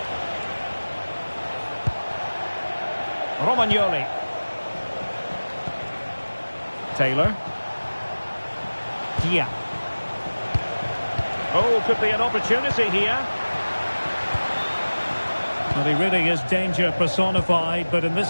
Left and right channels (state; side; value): inverted; both; correlation -1.00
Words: Romagnoli. Taylor. Dia. Oh, could be an opportunity here. Well, he really is danger personified, but in